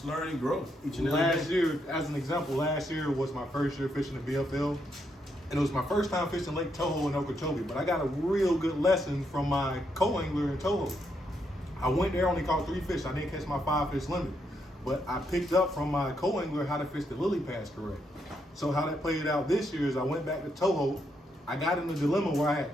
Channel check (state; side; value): normal; both; correlation 0.78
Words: learn and grow each and every Last day. year, as an example, last year was my first year fishing the BFL. And it was my first time fishing Lake Toho in Okeechobee, but I got a real good lesson from my co-angler in Toho. I went there, only caught 3 fish. I didn't catch my 5-fish limit, but I picked up from my co-angler how to fish the lily pads correct. So how that played out this year is I went back to Toho. I got in a dilemma where I had